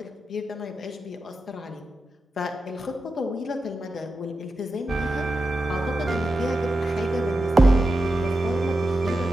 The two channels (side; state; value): both; normal; correlation 0.90